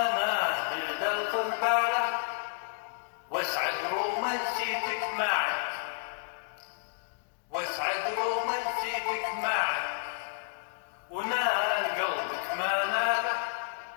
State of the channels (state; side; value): silent; right; digital silence